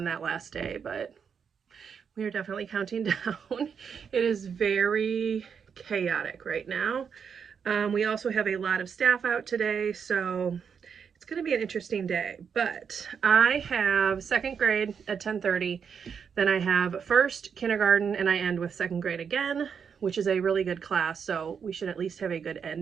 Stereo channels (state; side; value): quieter; left; 6.8 dB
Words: that last day, but we are definitely counting down. It is very chaotic right now. We also have a lot of staff out today, so it's going to be an interesting day. But I have second grade at 10:30, then I have first kindergarten, and I end with second grade again, which is a really good class, so we should at least have a good